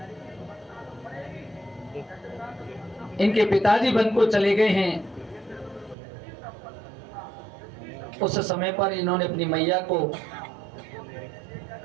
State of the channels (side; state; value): left; drops out; at 6.0 s